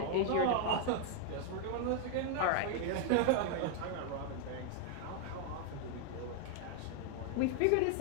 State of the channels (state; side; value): different; both; correlation 0.00